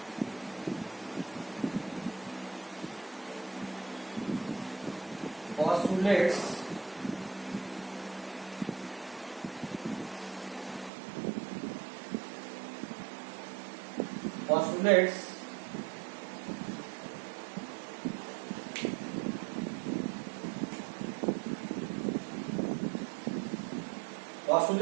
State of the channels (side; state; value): left; drops out; at 10.9 s